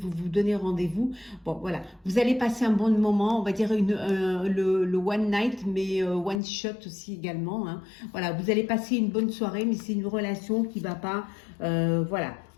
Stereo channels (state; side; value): drops out; right; at 6.4 s